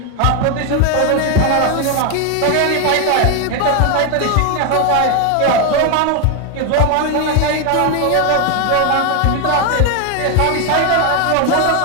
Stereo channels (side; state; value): both; different; correlation 0.01